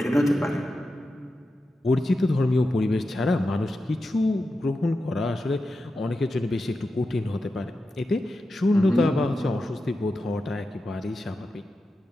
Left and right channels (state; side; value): normal; both; correlation 0.90